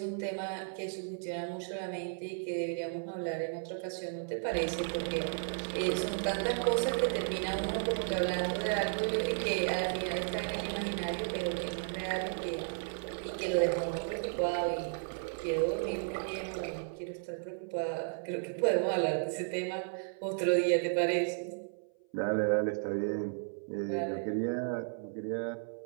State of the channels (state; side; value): silent; left; 55 dB below the other